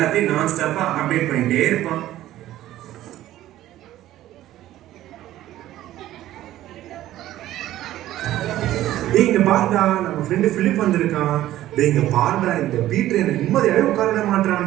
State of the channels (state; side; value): quieter; left; 14.0 dB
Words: நான் ஸ்டாப்பா அப்டேட் பண்ணிட்டே இருப்பான். டேய் இங்க பாருடா, நம்ம ஃப்ரெண்டு பிலிப் வந்திருக்கான். டேய் இங்க பாருடா, இந்த பீட்டர் எனக்கு நிம்மதியாவே உட்கார